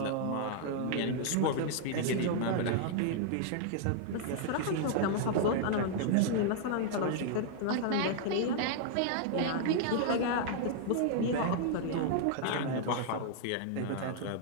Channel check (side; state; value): both; different; correlation -0.01